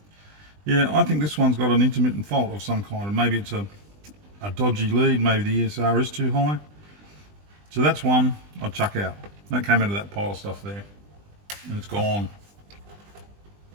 Yeah, I think this one's got an intermittent fault of some kind, and maybe it's a dodgy lead, maybe the ESR is too high. So that's one I'd chuck out. That came out of that pile of stuff there, and it's gone.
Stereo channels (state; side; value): late; left; 20 ms